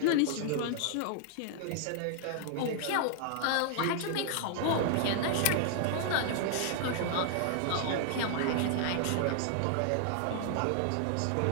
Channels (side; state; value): both; different; correlation 0.00